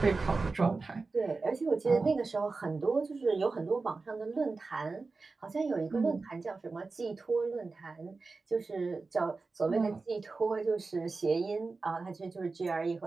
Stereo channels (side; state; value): left; quieter; 3.9 dB